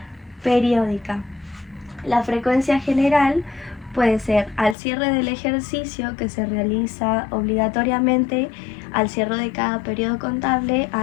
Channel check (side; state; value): right; drops out; at 4.8 s